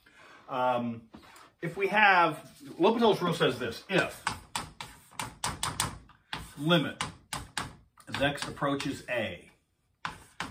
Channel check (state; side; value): identical; both; correlation 1.00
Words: If we have, LHopitals Rule says this: if limit as x approaches a.